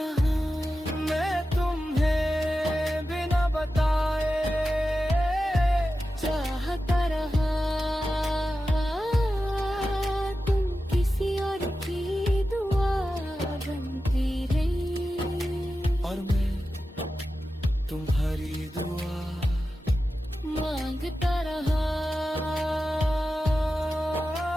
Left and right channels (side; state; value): both; normal; correlation 0.92